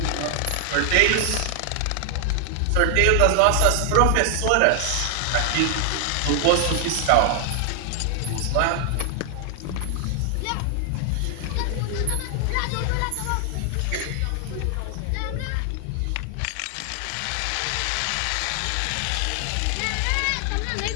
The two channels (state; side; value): different; both; correlation 0.00